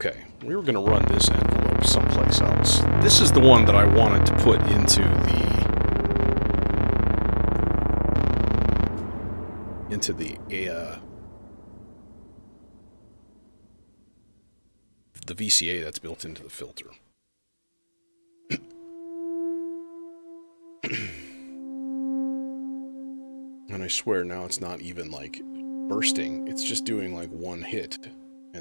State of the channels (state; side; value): inverted; both; correlation -1.00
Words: we were going to run this envelope someplace else. This is the one that I wanted to put into the VCA that's built into the filter. And I swear now it's not even like bursting, it's just doing like one hit